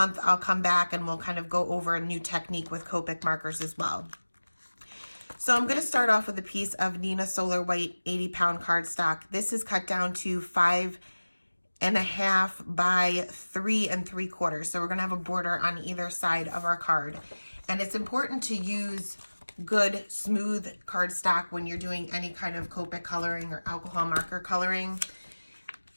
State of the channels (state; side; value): inverted; both; correlation -1.00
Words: I'll come back and we'll kind of go over a new technique with Copic markers as well. So I'm going to start off with a piece of Nina Solar White 80-pound cardstock. This is cut down to 5.5 by 3 3/4. So we're going to have a border on either side of our card. And it's important to use good, smooth cardstock when you're doing any kind of Copic coloring or alcohol marker coloring